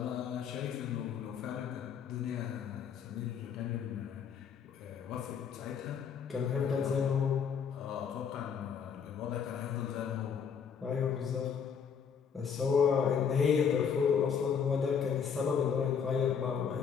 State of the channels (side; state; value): right; quieter; 7.0 dB